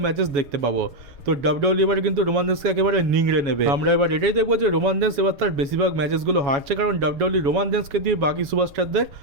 ম্যাচেস দেখতে পাবো। তো ডাব্লিউডব্লিউ এবারে কিন্তু রোমান রেন্সকে একেবারে নিংড়ে নেবে। আমরা এবার এটাই দেখবো যে রোমান রেন্স এবার তার বেশিরভাগ ম্যাচেসগুলো হারছে, কারণ ডাব্লিউডব্লিউ রোমান রেন্সকে দিয়ে বাকি সুপারস্টারদের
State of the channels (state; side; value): late; left; 7.1 ms